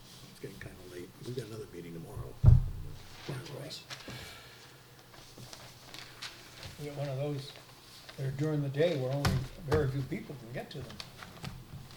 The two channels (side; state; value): both; identical; correlation 1.00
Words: It's getting kind of late. We've got another meeting tomorrow. Right. We got one of those, they're during the day where only very few people can get to them.